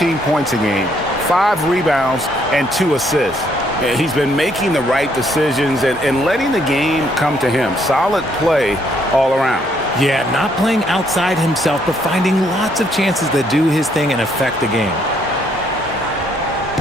points a game, 5 rebounds, and 2 assists. He's been making the right decisions and letting the game come to him. Solid play all around. Yeah, not playing outside himself, but finding lots of chances to do his thing and affect the game.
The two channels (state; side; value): normal; both; correlation 0.69